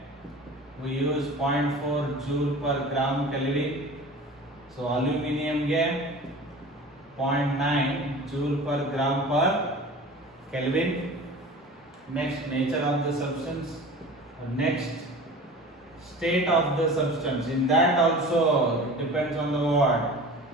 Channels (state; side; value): normal; both; correlation 0.38